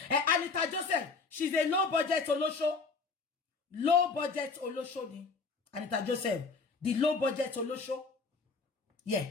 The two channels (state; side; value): quieter; right; 4.5 dB